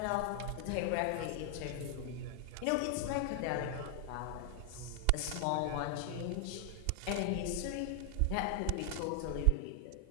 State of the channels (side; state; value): both; different; correlation 0.00